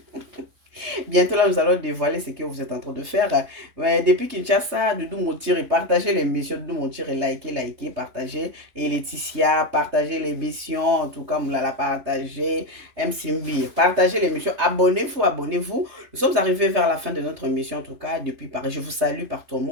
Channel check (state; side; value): late; left; 3.3 ms